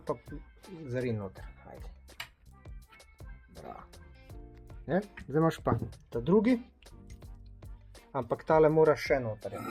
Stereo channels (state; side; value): identical; both; correlation 1.00